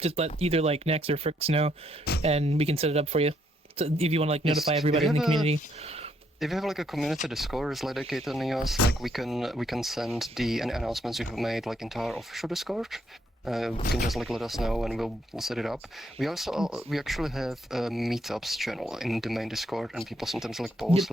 let either like Nex or Fricks know, and we can set it up for you. So if you want to like notify everybody in the community. If you have like a community Discord is dedicated to Neos, like we can send the any announcements you have made like into our official Discord. You can just like let us know and we'll set it up. We actually have a meetups channel in the main Discord, and people sometimes like post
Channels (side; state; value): both; normal; correlation 0.72